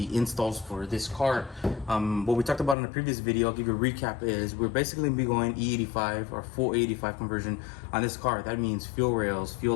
installs for this car. What we talked about in the previous video, I'll give you a recap, is we're basically going to be going E85 or full 85 conversion on this car. That means fuel rails,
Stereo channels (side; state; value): right; drops out; at 2.8 s